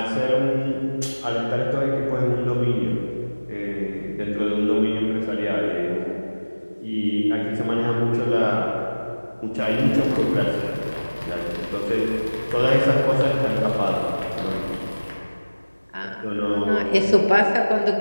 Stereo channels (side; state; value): both; inverted; correlation -1.00